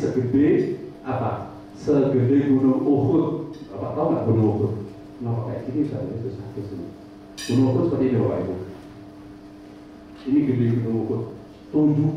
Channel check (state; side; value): identical; both; correlation 1.00